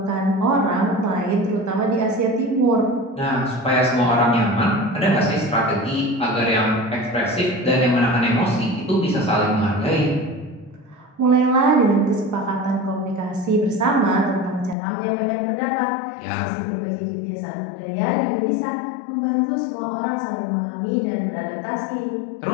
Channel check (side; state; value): right; drops out; at 14.8 s